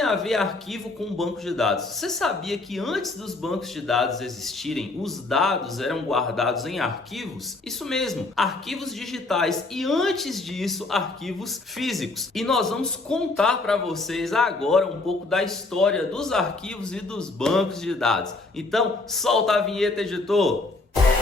a ver arquivo com banco de dados? Você sabia que antes dos bancos de dados existirem, os dados eram guardados em arquivos? Isso mesmo, arquivos digitais e antes disso, arquivos físicos. E nós vamos contar para vocês agora um pouco da história dos arquivos e dos bancos de dados. Então, solta a vinheta, editor!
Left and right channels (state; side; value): quieter; right; 3.3 dB